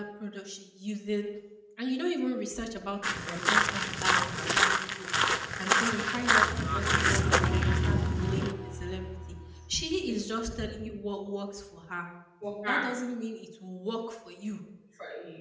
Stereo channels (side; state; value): both; identical; correlation 1.00